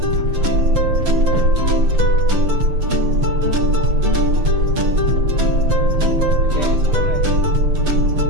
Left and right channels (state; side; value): late; left; 6.6 ms